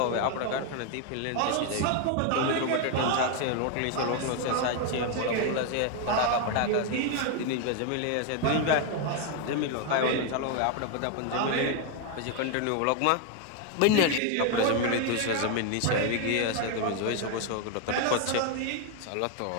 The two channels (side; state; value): both; different; correlation 0.01